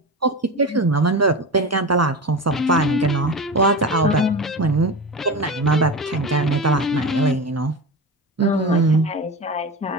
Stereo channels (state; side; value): normal; both; correlation 0.26